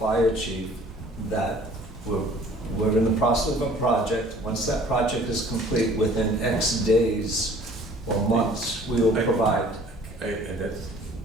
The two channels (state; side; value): normal; both; correlation 0.52